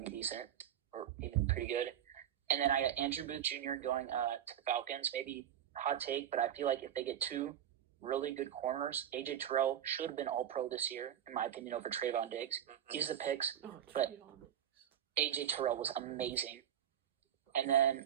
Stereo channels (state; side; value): quieter; left; 10.2 dB